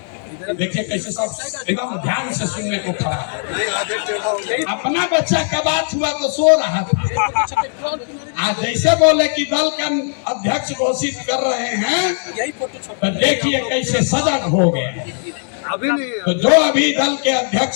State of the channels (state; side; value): silent; right; digital silence